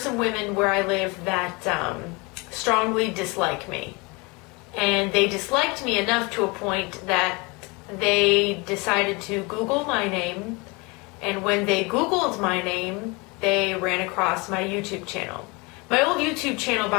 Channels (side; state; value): right; quieter; 27.3 dB